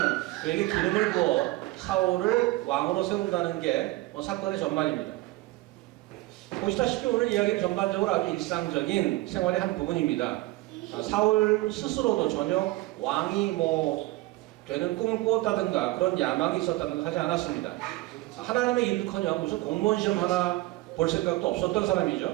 그에게 기름을 부어 사울을 왕으로 세운다는 게 사건의 전말입니다. 보시다시피 오늘 이야기는 전반적으로 아주 일상적인 생활의 한 부분입니다. 사울 스스로도 전혀 왕이 되는 꿈을 꾸었다든가 그런 야망이 있었다든가 하지 않았습니다. 하나님의 일은커녕 무슨 공무원 시험 하나 볼 생각도 없었던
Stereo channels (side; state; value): left; quieter; 19.5 dB